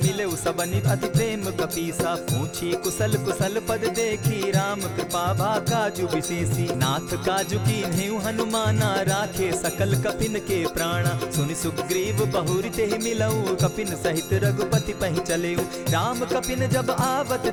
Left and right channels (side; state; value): both; identical; correlation 1.00